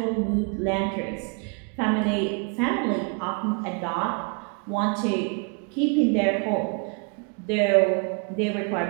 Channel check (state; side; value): quieter; left; 36.2 dB